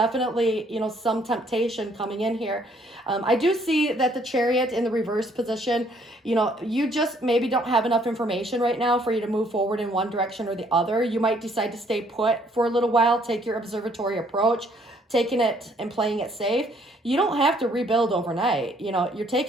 some temptation coming in here. I do see that the Chariot in the reverse position, you just maybe don't have enough information right now for you to move forward in one direction or the other. You might decide to stay put for a little while, take your observatory approach, taking it and playing it safe. You don't have to rebuild overnight. You're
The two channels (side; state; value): both; normal; correlation 0.65